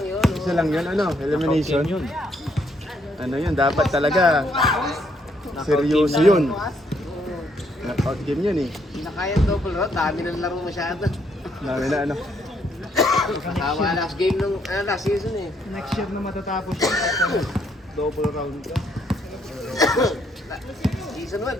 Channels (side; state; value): both; normal; correlation 0.71